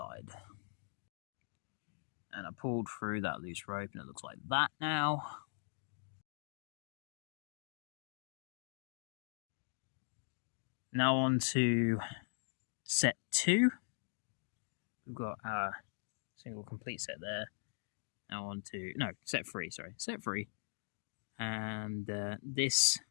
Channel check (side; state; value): right; silent; digital silence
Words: And I pulled through that loose rope and it looks like that now. Now on to set 2. We've got our single complete set there. Now on to, set 3, sorry. Set 3. And this